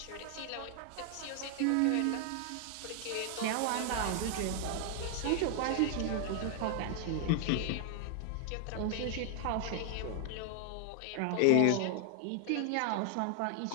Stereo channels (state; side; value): different; both; correlation 0.00